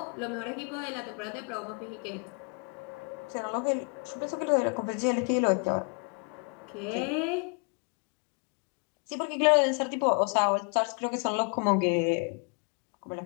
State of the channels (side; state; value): right; quieter; 37.7 dB